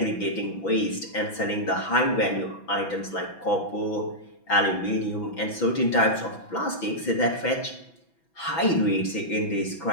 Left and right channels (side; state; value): right; late; 6.0 ms